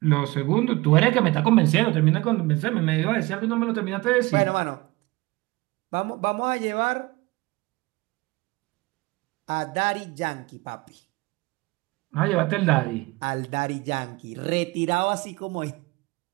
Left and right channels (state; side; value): quieter; left; 22.2 dB